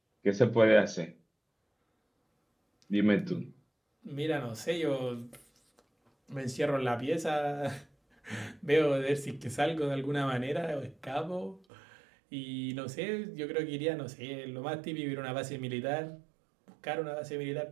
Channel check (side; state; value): left; drops out; at 11.6 s